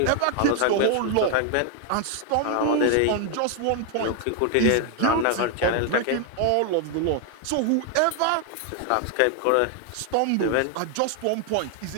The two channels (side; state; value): both; different; correlation 0.00